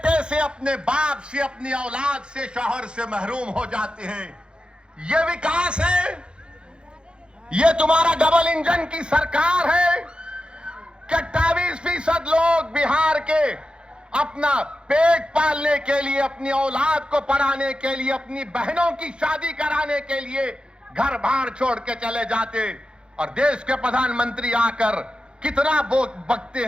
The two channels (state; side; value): late; left; 0.053 ms